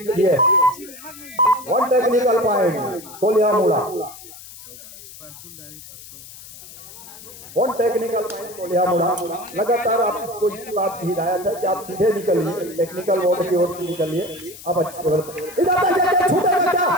किए। 1 टेक्निकल पॉइंट कोल्हा मुड़ा, 1 टेक्निकल पॉइंट कोल्हा मुड़ा। लगातार आपको इस बात की हिदायत है कि आप सीधे निकलिए, टेक्निकल बोर्ड की ओर से निकलिए। अब अच्छी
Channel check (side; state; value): left; noise; hiss, 17 dB below the sound